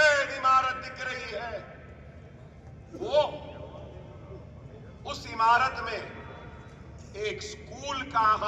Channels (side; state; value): both; identical; correlation 1.00